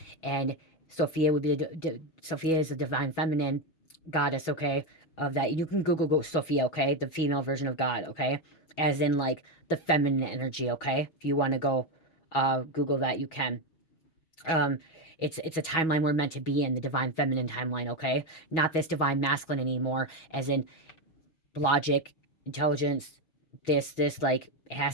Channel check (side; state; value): right; late; 6.2 ms